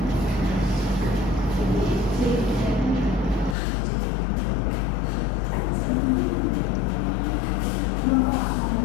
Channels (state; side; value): drops out; right; at 3.6 s